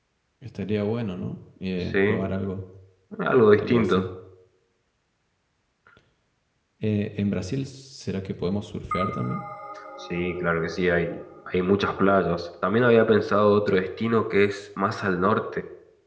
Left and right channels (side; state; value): both; identical; correlation 1.00